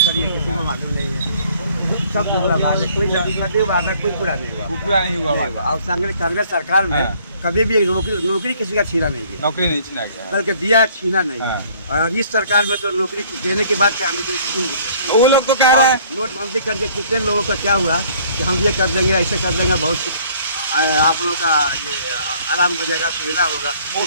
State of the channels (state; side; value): inverted; both; correlation -0.58